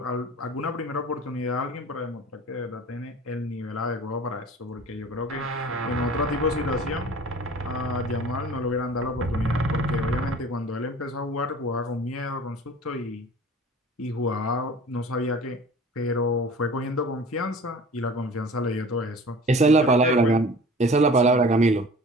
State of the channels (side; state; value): both; normal; correlation 0.43